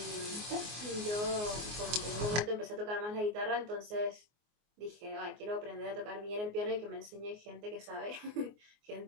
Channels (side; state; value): left; late; 24 ms